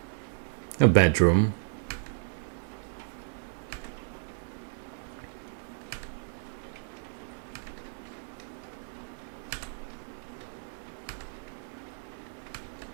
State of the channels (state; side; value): silent; left; digital silence